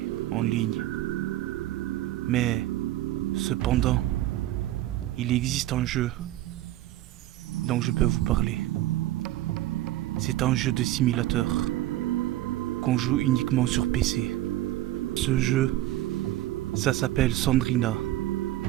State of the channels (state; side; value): quieter; left; 15.0 dB